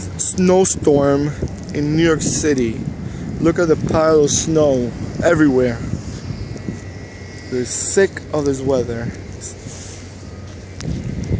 snowstorm in New York City. Look at the pile of snow everywhere. They're sick of this weather.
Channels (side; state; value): both; identical; correlation 1.00